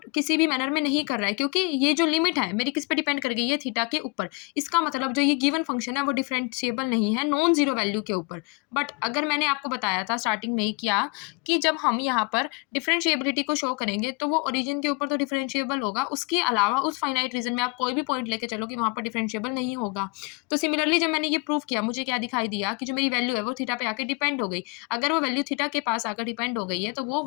किसी भी मैनर में नहीं कर रहा है, क्योंकि ये जो लिमिट है मेरी किस पे डिपेंड कर गई है, थीटा के ऊपर। इसका मतलब जो ये गिवन फंक्शन है वो डिफरेंशिएबल नहीं है नॉन जीरो वैल्यू के ऊपर। बट अगर मैंने आपको बताया था स्टार्टिंग में ही किया कि जब हम यहाँ पर डिफरेंशिएबिलिटी को शो करेंगे तो वो ओरिजिन के ऊपर तो डिफरेंशिएबल होगा, उसके अलावा उस फाइनाइट रीजन में आप कोई भी पॉइंट लेके चलो कि वहाँ पर डिफरेंशिएबल नहीं होगा। तो सिमिलरली जब मैंने ये प्रूव किया, मुझे क्या दिखाई दिया कि जो मेरी वैल्यू है वो थीटा पे आके डिपेंड हो गई। अगर वो वैल्यू थीटा के पास आकर डिपेंड हो गई है तो वो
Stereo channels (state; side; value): quieter; right; 29.6 dB